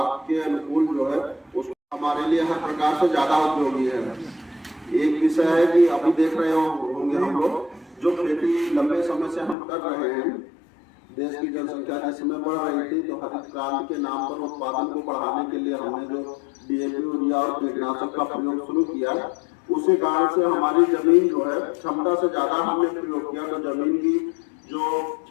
के अनुकूल जो है उसको हमारे लिए हर प्रकार से ज्यादा उपयोगी है। एक विषय है कि अभी देख रहे होंगे हम लोग जो खेती लंबे समय से हम कर रहे हैं, देश की जनसंख्या जिस समय बढ़ रही थी तो हरित क्रांति के नाम पर उत्पादन को बढ़ाने के लिए हमने जो डीएपी, यूरिया और कीटनाशक का प्रयोग शुरू किया, उसी कारण से हमारी जमीन जो है क्षमता से ज्यादा हमने प्रयोग किया तो जमीन की जो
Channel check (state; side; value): drops out; right; at 9.6 s